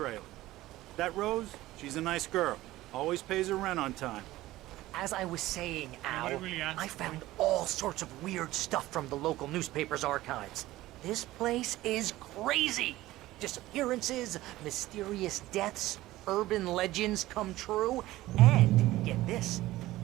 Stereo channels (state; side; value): quieter; left; 16.7 dB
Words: That Rose, she's a nice girl. Always pays her rent on time. As I was saying, Al, Nobody really asked I found all sorts of weird stuff from the local newspaper's archives. This place is crazy. Disappearances, mysterious deaths, urban legends come true, and get this,